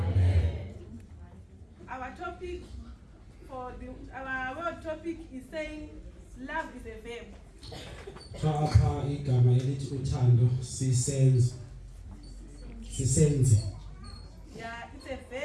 Our topic our word topic is saying love is a verb. Apha igama elithi uthando sisenze. Yeah, it's a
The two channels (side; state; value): both; identical; correlation 1.00